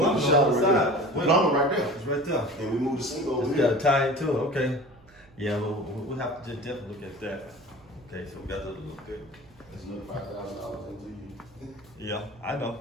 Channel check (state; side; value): noise; right; hum, 27 dB below the sound